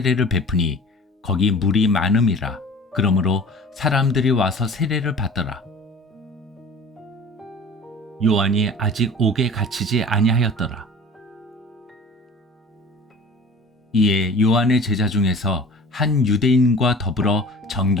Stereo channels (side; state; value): both; normal; correlation 0.42